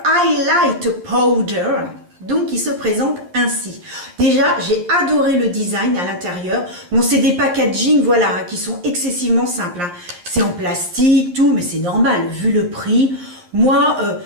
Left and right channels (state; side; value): late; left; 11 ms